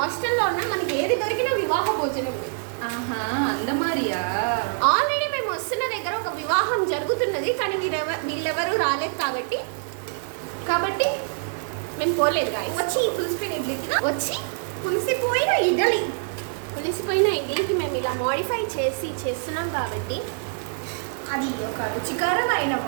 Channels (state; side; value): silent; left; 62 dB below the other